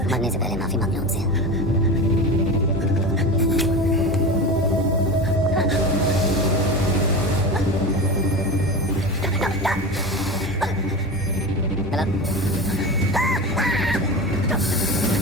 मरने से पहले माफी मांग लो उनसे।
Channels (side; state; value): both; normal; correlation 0.27